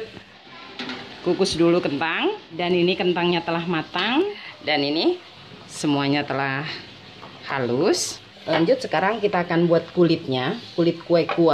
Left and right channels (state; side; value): identical; both; correlation 1.00